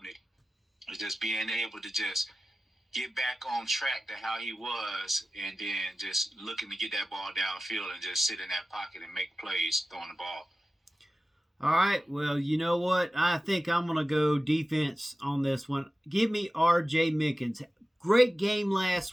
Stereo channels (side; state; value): both; normal; correlation 0.95